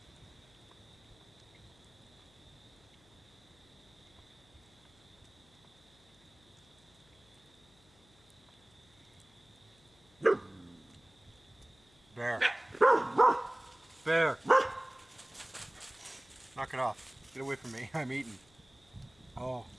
Bear. Bear. Knock it off. Get away from me. I'm eating. Oh.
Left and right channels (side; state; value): left; noise; hum, 29 dB below the sound